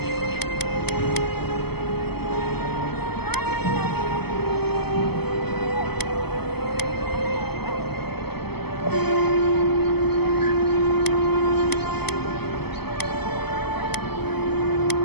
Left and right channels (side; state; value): right; late; 0.97 ms